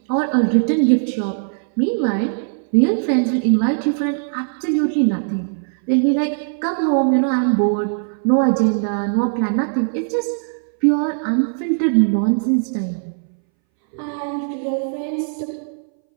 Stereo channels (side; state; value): left; silent; 63 dB below the other